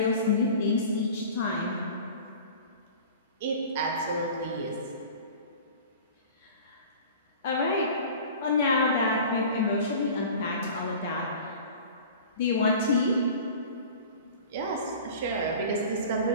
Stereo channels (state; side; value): inverted; both; correlation -0.40